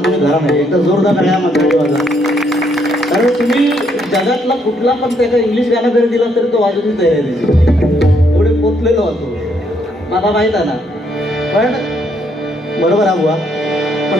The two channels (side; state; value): both; normal; correlation 0.72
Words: तुम्ही धरा नाही, एकदा जोरदार सगळ्या माणसाची वाजवा. कारण तुम्ही जगातला कुठला पण त्याचा इंग्लिश गाणं जरी दिला तरी तो वाजवून तयार आहे त्याची, एवढे पोचलेलो होतो मला माहीत आहे ना. पण बरोबर हा बुवा, पण